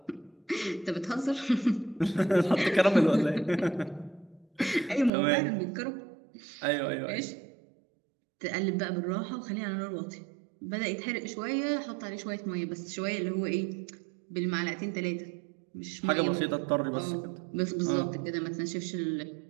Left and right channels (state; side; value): drops out; left; at 5.1 s